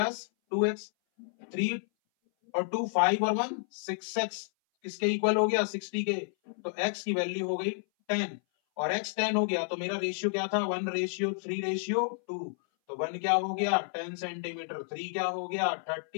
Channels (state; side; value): silent; right; 57 dB below the other